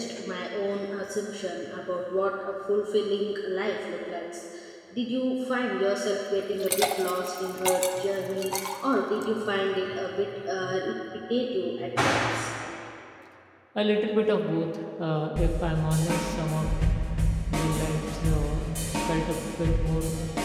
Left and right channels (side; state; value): both; identical; correlation 1.00